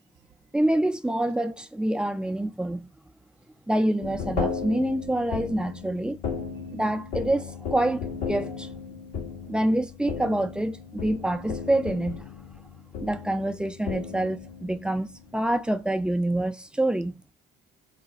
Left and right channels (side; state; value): both; normal; correlation 0.89